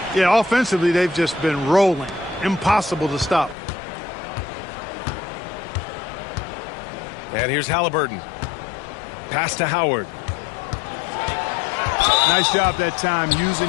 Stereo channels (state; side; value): drops out; right; at 3.6 s